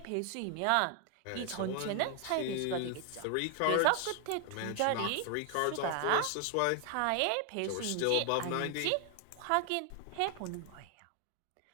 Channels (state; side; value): different; both; correlation 0.00